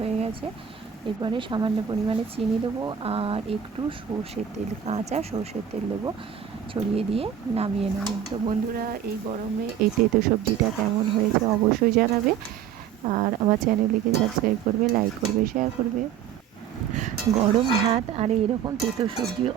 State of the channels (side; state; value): left; quieter; 8.9 dB